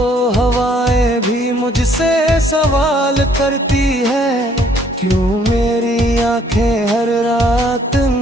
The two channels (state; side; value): normal; both; correlation 0.64